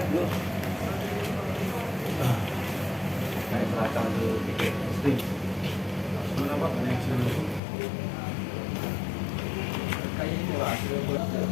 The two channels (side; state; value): right; drops out; at 7.6 s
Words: belakang ke tiket string. Kenapa banyak sini? Kayak ini Pak.